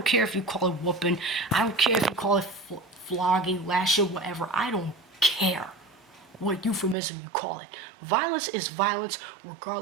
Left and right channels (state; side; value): drops out; left; at 7.0 s